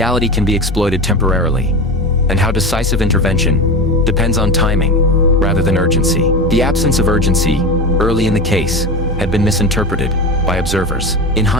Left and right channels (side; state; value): both; normal; correlation 0.24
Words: can be exploited temporarily, and how decisive intervention depends on timing rather than urgency. The absence of urgency early in the case had been misinterpreted by observers. In